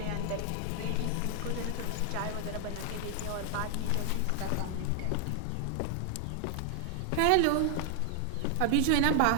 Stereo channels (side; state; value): both; different; correlation 0.00